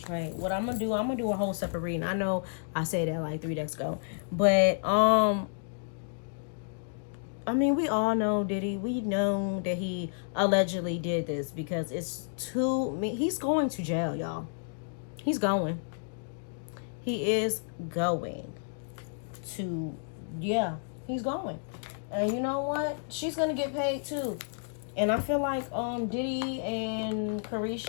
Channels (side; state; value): right; silent; digital silence